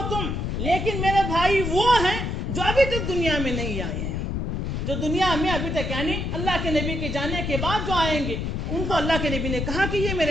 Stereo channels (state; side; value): noise; left; rumble, 2 dB below the sound